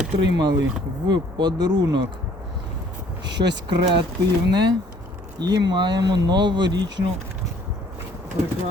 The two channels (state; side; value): normal; both; correlation 0.58